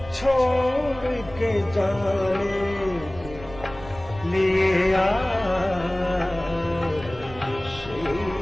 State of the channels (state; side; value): noise; right; rumble, 16 dB below the sound